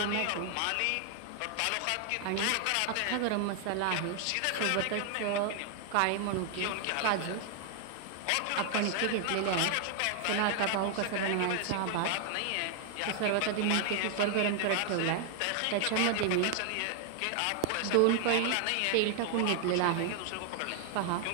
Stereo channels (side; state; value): both; different; correlation 0.00